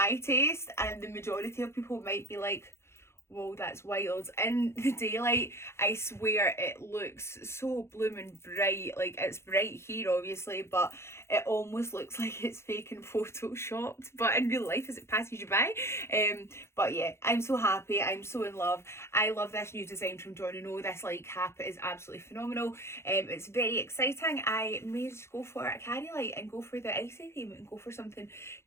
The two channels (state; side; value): late; right; 0.13 ms